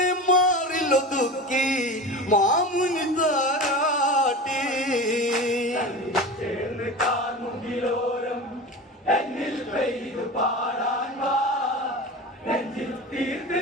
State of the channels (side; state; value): both; normal; correlation 0.30